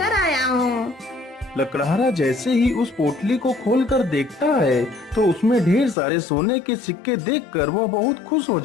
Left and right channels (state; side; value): drops out; right; at 6.0 s